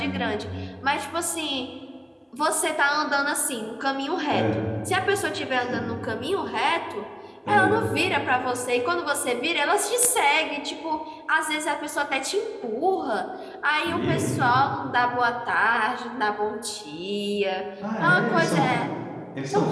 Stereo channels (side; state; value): both; identical; correlation 1.00